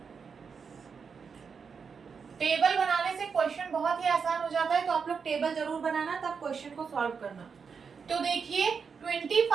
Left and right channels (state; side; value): quieter; left; 5.9 dB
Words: टेबल बनाने से क्वेश्चन बहुत ही आसान हो जाता है, तो आप लोग टेबल जरूर बनाना, तब क्वेश्चन को सॉल्व करना। तो देखिए